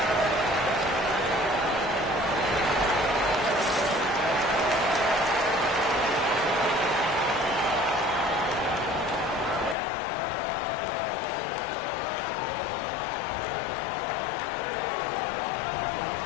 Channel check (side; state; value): right; drops out; at 9.8 s